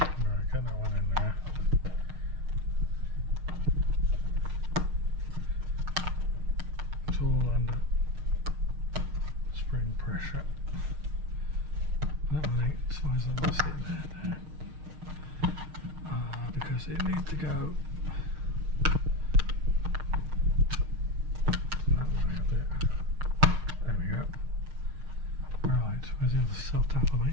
get that one in there. It's all under spring pressure. That one ain't as far as I'm going to sit there now. Because it needs to go that way a bit. There we go. Right, where's the other self tapper,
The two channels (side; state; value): left; late; 6.5 ms